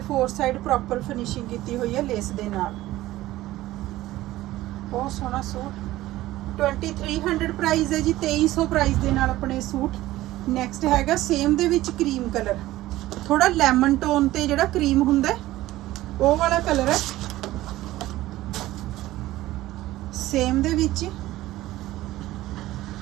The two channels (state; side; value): quieter; left; 16.2 dB